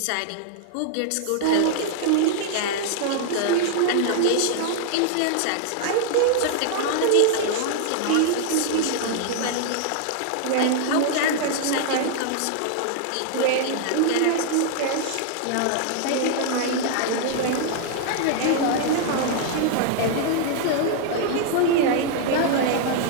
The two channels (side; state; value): both; different; correlation -0.01